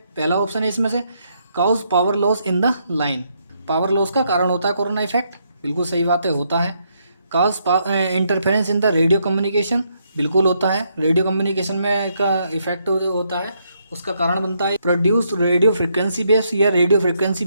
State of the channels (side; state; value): both; inverted; correlation -0.75